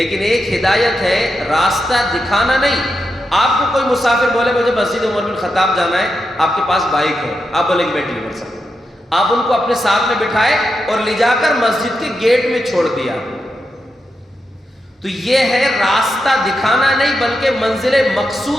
ایک ہدایت ہے راستہ دکھانا نہیں. آپ کو کوئی مسافر بولے مجھے مسجد عمر بن خطاب جانا ہے، آپ کے پاس بائک ہے، آپ بولیں گے میں ڈلیور سکتا ہوں، آپ ان کو اپنے ساتھ میں بٹھائے اور لے جا کر مسجد کے گیٹ میں چھوڑ دیا. تو یہ ہے راستہ دکھانا نہیں بلکہ منزل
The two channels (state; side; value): normal; both; correlation 0.86